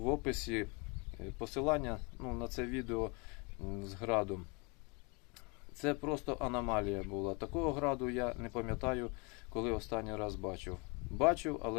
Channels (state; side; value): quieter; right; 30.8 dB